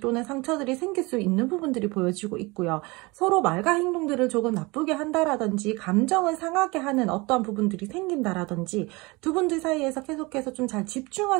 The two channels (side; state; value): left; quieter; 24.7 dB